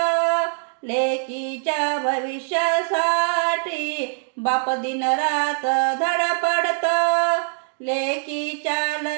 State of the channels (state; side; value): silent; left; digital silence